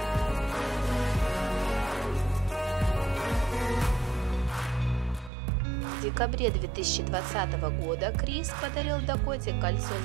В декабре 2020 года Крис подарил Дакоте кольцо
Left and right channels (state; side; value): drops out; left; at 5.3 s